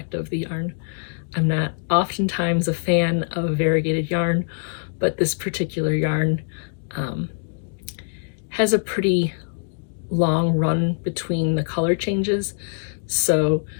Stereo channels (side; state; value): right; silent; digital silence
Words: of the yarn. I'm not oftentimes a fan of variegated yarn, but this particular yarn has a pretty long run between the color changes. So